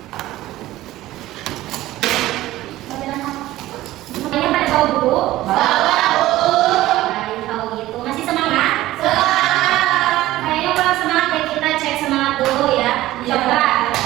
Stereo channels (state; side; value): quieter; left; 16.0 dB